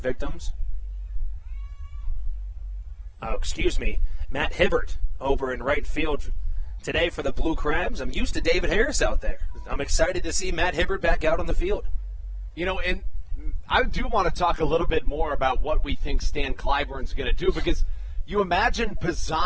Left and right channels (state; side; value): identical; both; correlation 1.00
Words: victims. Oh, excuse me, Matt Hibbert over in right field today for the Blue Crabs. I'm used to David Harris out there. I'm excited to see Matt Hibbert back out on the field. You know, and I do want to talk a little bit more about what we think Stan Clyburn's going to do, because you imagine